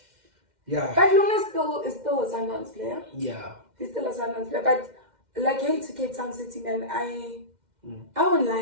yeah. But Lunga is still a Sundowns player. Yeah. He's still a Sundowns player, but like, hey, to Cape Town City, man, I won't lie,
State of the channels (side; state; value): left; late; 2.1 ms